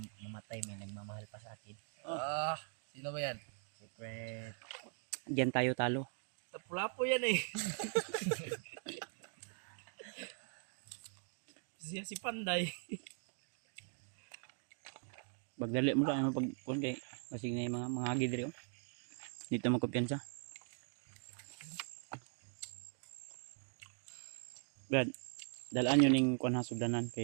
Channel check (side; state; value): left; silent; 50 dB below the other